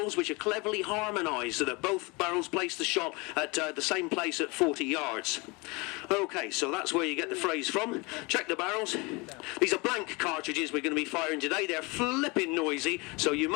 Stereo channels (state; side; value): quieter; right; 26.8 dB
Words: which are cleverly harmonised so that both barrels place the shot at the same place at 40 yards. Okay, so that's where you get the phrase from. Check the barrels. These are blank cartridges we're going to be firing today. They're flipping noisy, so you